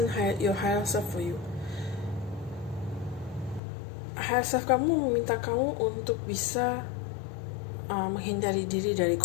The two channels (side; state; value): right; drops out; at 3.6 s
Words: your higher self for you? Higher self kamu meminta kamu untuk bisa menghindari diri dari